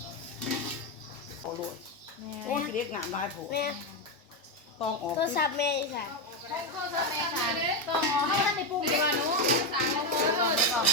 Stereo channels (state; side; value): normal; both; correlation 0.08